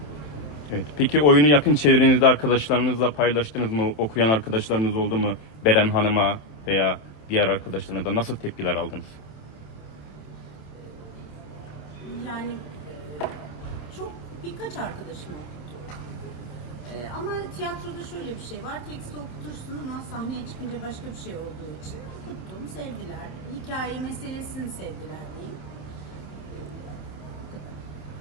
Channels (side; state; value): right; late; 27 ms